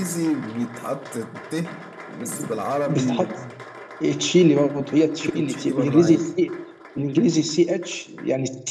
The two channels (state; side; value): identical; both; correlation 1.00